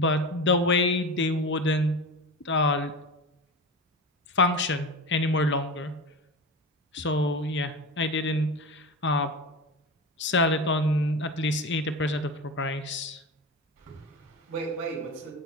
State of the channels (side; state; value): both; normal; correlation 0.26